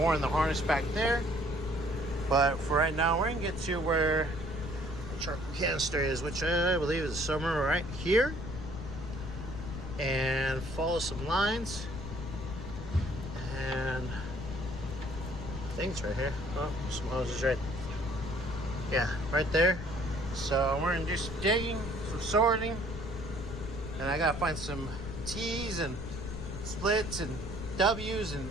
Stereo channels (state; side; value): noise; left; rumble, 8 dB below the sound